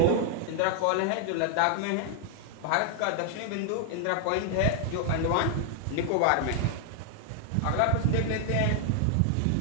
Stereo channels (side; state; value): both; different; correlation 0.00